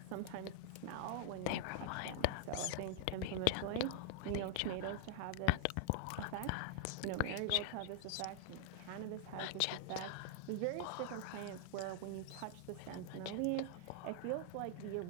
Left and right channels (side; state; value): both; different; correlation -0.01